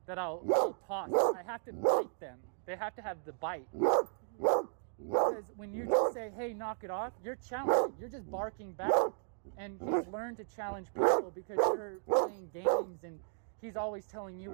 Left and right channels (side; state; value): left; silent; digital silence